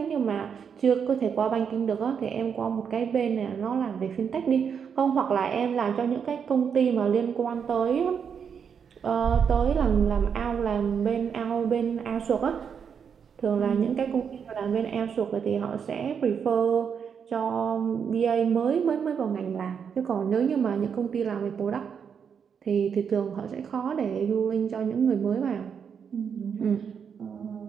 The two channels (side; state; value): left; quieter; 7.0 dB